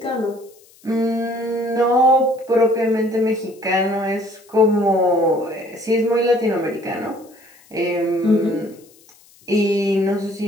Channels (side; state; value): left; noise; hiss, 28 dB below the sound